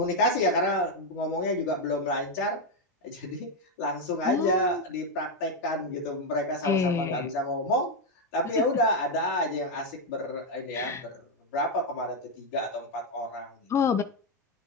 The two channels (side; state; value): both; normal; correlation 0.03